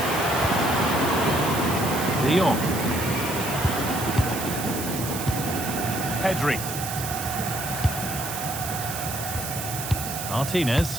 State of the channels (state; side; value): noise; right; hiss, 6 dB below the sound